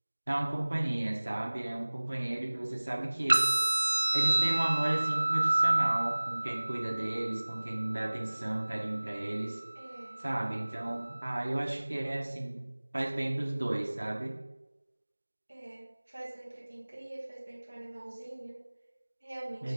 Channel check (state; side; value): inverted; both; correlation -1.00